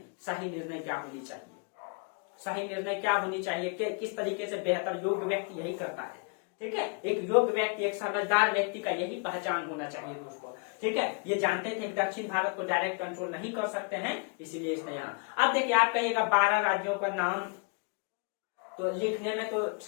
सही निर्णय क्या होनी चाहिए, सही निर्णय क्या होनी चाहिए, किस तरीके से बेहतर योग्य व्यक्ति यही करता है। ठीक है, एक योग्य व्यक्ति, एक समझदार व्यक्ति का यही पहचान होना चाहिए दोस्तों। ठीक है, ये जानते थे कि दक्षिण भारत को डायरेक्ट कंट्रोल नहीं कर सकते हैं, इसीलिए इसने यहाँ। अब देखिए, आप कहिएगा 12 राज्यों का नाम, तो लिखने में तो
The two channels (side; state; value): right; quieter; 37.4 dB